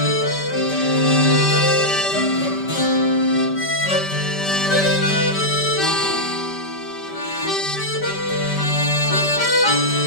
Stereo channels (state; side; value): late; right; 5.1 ms